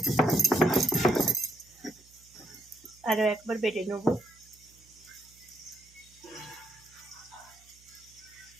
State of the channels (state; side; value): noise; right; hum, 28 dB below the sound